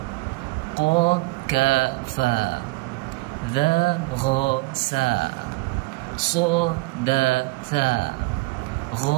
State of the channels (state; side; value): quieter; left; 22.7 dB